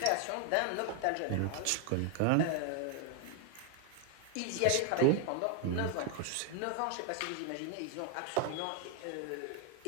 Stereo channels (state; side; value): different; both; correlation 0.00